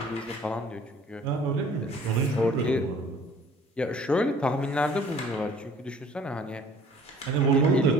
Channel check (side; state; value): both; normal; correlation 0.52